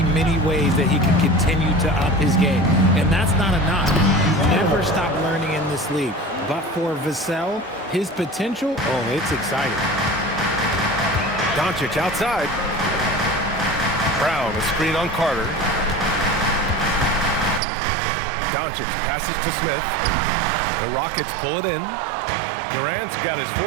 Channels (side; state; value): left; drops out; at 17.6 s